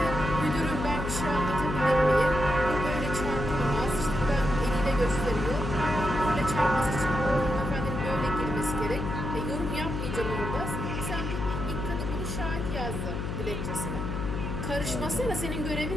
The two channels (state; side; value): noise; left; hum, 3 dB below the sound